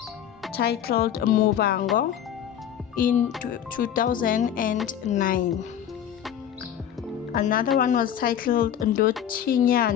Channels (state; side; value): quieter; right; 9.7 dB